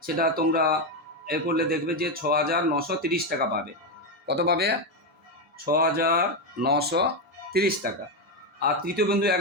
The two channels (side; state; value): both; normal; correlation 0.07